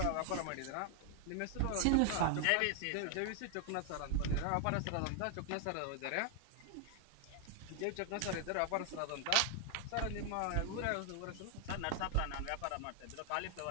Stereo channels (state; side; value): different; both; correlation 0.00